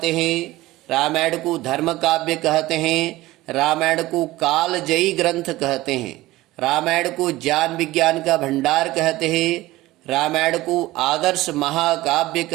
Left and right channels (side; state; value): left; quieter; 17.8 dB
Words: हैं, रामायण को धर्म काव्य कहते हैं, रामायण को कालजयी ग्रंथ कहते हैं, रामायण को ज्ञान विज्ञान का भंडार कहते हैं, रामायण को आदर्श महाकाव्य